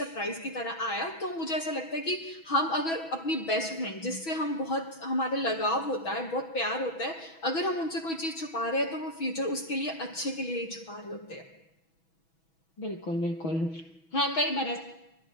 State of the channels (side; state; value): right; late; 6.1 ms